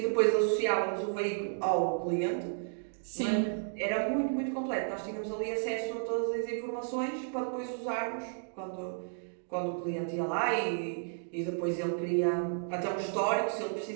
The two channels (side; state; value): left; silent; digital silence